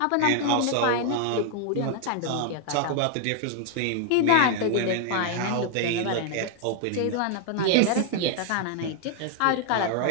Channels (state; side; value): different; both; correlation 0.00